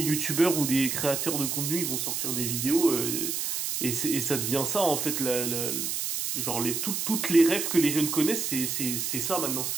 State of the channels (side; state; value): right; noise; hiss, 1 dB below the sound